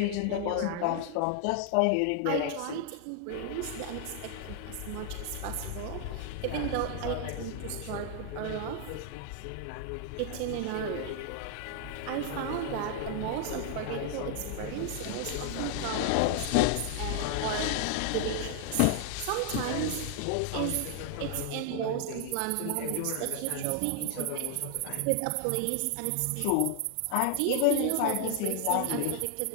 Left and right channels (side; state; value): both; different; correlation 0.00